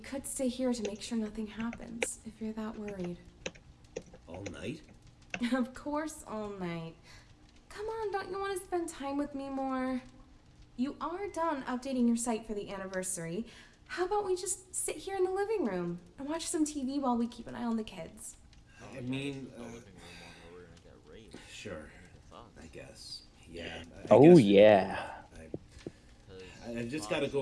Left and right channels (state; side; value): identical; both; correlation 1.00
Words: stay here to make sure nothing happens, if you're that worried. All night? Of course, all night. Come on, don't you want to spend time with me more? You are done updating your site for the anniversary. How about we just sit here in the living room and watch some TV while we keep an eye on the kids? I mean, The living room one where we're gonna get raped. sure, Fuck. I guess. Yeah. I Oh, guess- yeah. I just gotta